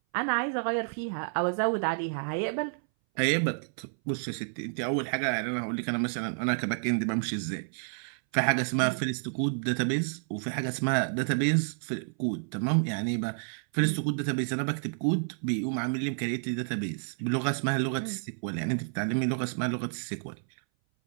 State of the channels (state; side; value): silent; left; 58 dB below the other